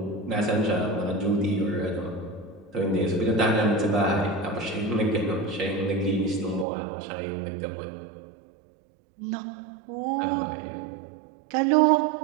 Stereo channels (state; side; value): drops out; left; at 6.7 s